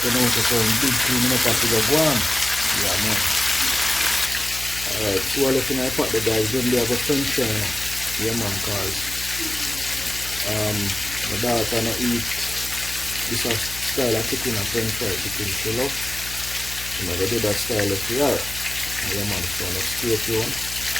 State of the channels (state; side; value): noise; left; hum, 13 dB below the sound